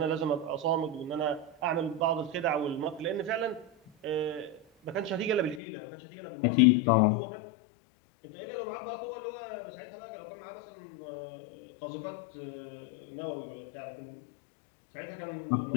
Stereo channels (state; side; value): drops out; right; at 5.6 s